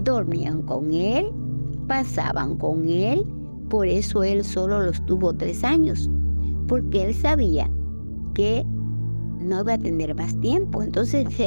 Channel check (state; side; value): inverted; both; correlation -1.00